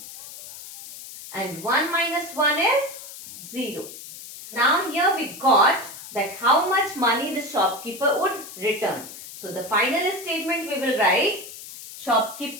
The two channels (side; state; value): left; noise; hiss, 14 dB below the sound